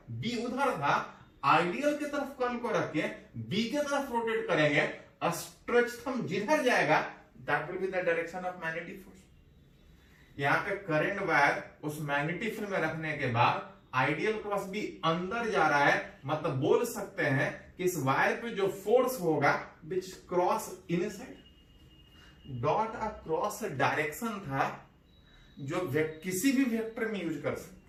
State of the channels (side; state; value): both; identical; correlation 1.00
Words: बी उधर था, आइडियल के तरफ कर्ल को रख के बी के तरफ रोटेट करेंगे। स्ट्रेच थंब जिधर जाएगा that will be the direction of magnetic force. यहां पे करंट वायर उस मैग्नेटिक फील्ड में रखने के बाद आइडियल क्रॉस बी अंदर जा रहा है, मतलब बोल सकते हैं कि इस वायर पे जो फोर्स होगा विच cross inside dot a cross direction था, जो किसी भी वेक्टर में यूज कर